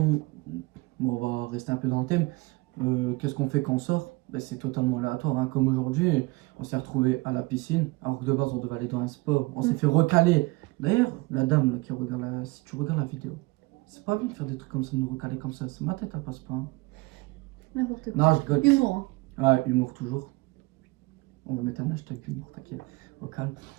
Bon, on va rester un peu dans le thème. Qu'est-ce qu'on fait quand on sort? Bah, c'est totalement aléatoire. Hein. Comme aujourd'hui, on s'est retrouvé à la piscine. Alors que de base, on devait aller dans un sport. On s'est fait recaler. D'ailleurs, la dame là, qui regarde si tu regardes la vidéo, c'est pas bien de faire des trucs comme ça, de nous recaler comme ça. C'est ma tête, elle passe pas. Hein. N'importe quoi. Non, je rigole. Humour. Hein. Ouais, humour toujours. On va mettre un hashtag humour, t'inquiète. Au calme.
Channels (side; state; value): left; quieter; 23.2 dB